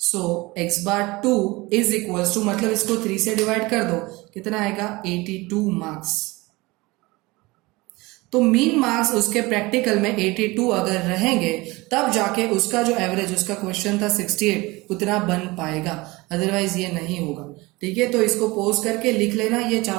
x bar 2 is equals to, मतलब इसको 3 से डिवाइड कर दो कितना आएगा 82 मार्क्स। तो मीन मार्क्स उसके प्रैक्टिकल में 82 अगर रहेंगे तब जाके उसका जो एवरेज, उसका क्वेश्चन था 68 उतना बन पाएगा, अदरवाइज ये नहीं होगा। ठीक है, तो इसको पोज करके लिख लेना ये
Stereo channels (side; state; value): left; quieter; 22.5 dB